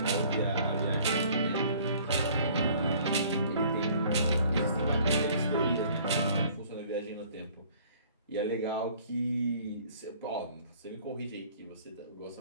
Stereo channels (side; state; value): both; inverted; correlation -0.54